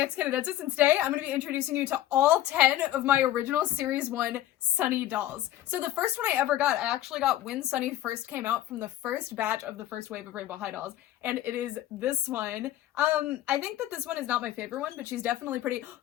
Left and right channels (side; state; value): right; quieter; 13.4 dB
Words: and today I'm going to be introducing you to all 10 of my original Series 1 Sunny dolls. So the first one I ever got, I actually got when Sunny first came out from the first batch of the first wave of Rainbow High dolls, and it is this one. I think that this one is not my favorite one, but she's definitely pretty...